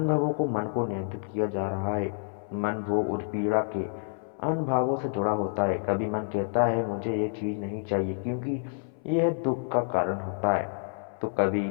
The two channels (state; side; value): silent; right; 59 dB below the other